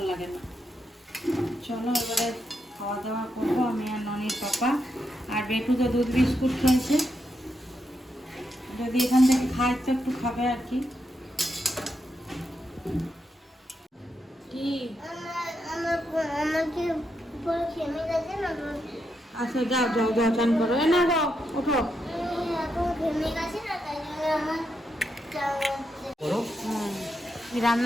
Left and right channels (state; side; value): normal; both; correlation 0.82